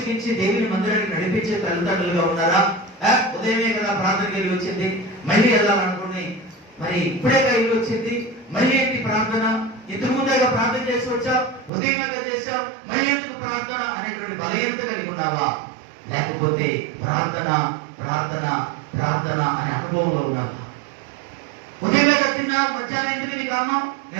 దేవుని మందిరానికి నడిపించే తల్లిదండ్రులుగా ఉన్నారా? ఉదయమే కదా ప్రార్థనకి వెళ్ళి వచ్చింది, మళ్ళీ వెళ్ళాలనుకుని మరి ఇప్పుడేగా వెళ్ళి వచ్చింది, మళ్ళీ ఏంటి ప్రార్థన? ఇంతకు ముందేగా ప్రార్థన చేసి వచ్చావు, ఉదయంగా చేశావు, మళ్ళీ ఎందుకు ప్రార్థన అనేటువంటి బలహీనత కలిగి ఉన్నావా? లేకపోతే ప్రార్థన ప్రార్థన ప్రార్థన అనే అనుభవంలో ఉన్నావా? ఉదయంగా తిన్నావు, మధ్యాహ్నం ఎందుకు నీ కారణం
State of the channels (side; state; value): left; drops out; at 11.7 s